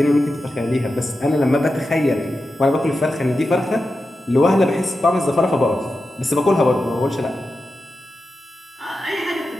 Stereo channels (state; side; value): normal; both; correlation 0.91